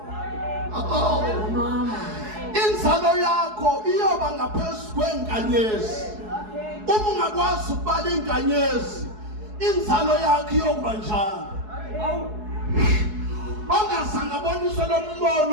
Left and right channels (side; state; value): left; late; 4.7 ms